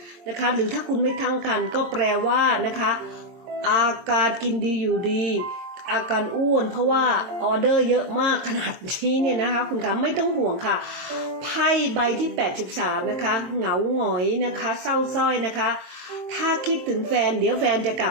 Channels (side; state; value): left; late; 22 ms